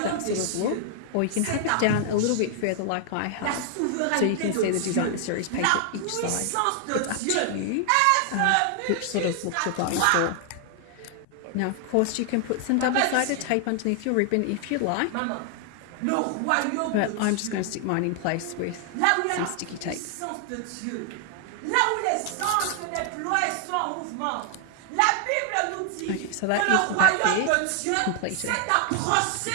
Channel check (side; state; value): both; different; correlation 0.00